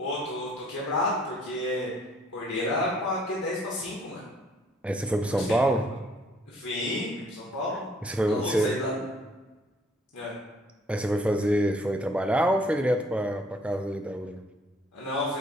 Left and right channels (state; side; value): normal; both; correlation 0.61